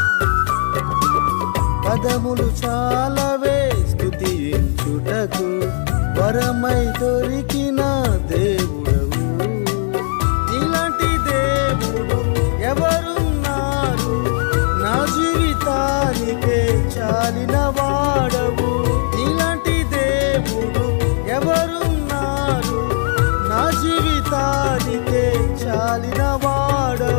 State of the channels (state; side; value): silent; right; digital silence